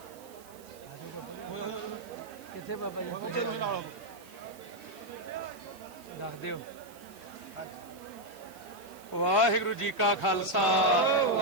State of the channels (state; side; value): noise; right; hiss, 22 dB below the sound